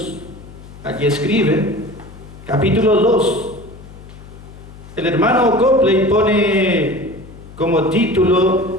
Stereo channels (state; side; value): noise; left; hum, 18 dB below the sound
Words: allí escribe, capítulo 2, el hermano Copley pone como